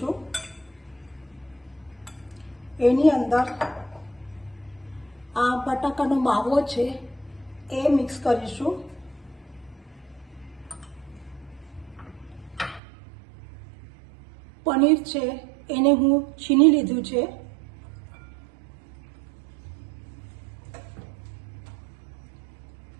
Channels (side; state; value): left; drops out; at 12.8 s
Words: એની અંદર આ બટાકાનો માવો છે એ મિક્સ કરીશું. પનીર છે એને હું છીની લીધું છે.